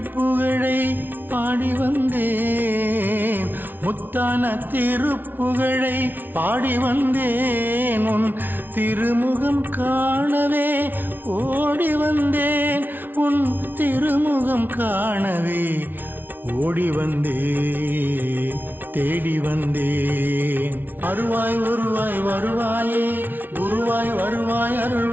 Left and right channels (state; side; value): late; left; 0.091 ms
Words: பாடி வந்தேன். முத்தான திருப்புகழை பாடி வந்தேன். உன் திருமுகம் காணவே ஓடி வந்தேன். உன் திருமுகம் காணவே ஓடி வந்தேன் தேடி வந்தேன். அருள்வாய் உருவாய் வருவாயே குருவாய் வருவாய்